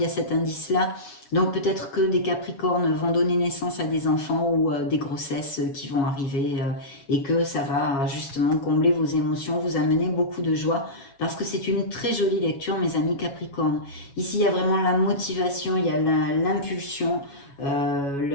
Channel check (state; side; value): late; right; 7.2 ms